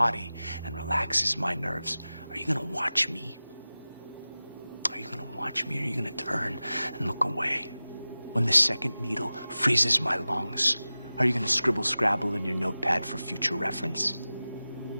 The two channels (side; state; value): both; inverted; correlation -0.96